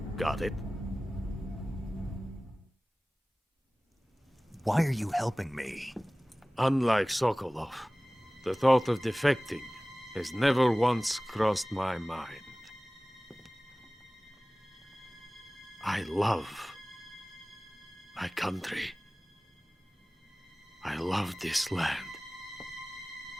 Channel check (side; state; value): both; normal; correlation 0.98